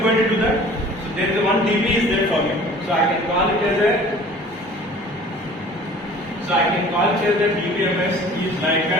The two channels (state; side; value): normal; both; correlation 0.48